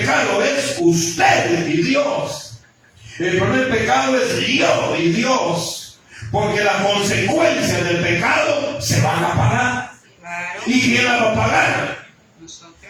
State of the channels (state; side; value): identical; both; correlation 1.00